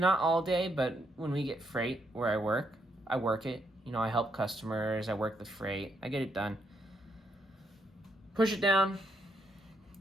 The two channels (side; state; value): both; normal; correlation 0.76